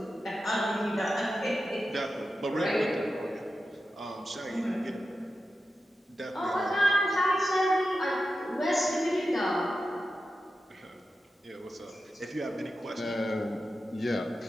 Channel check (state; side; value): normal; both; correlation 0.91